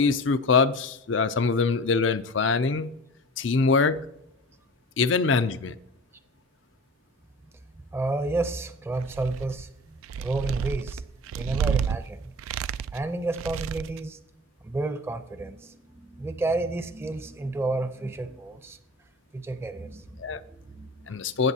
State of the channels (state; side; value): normal; both; correlation 0.36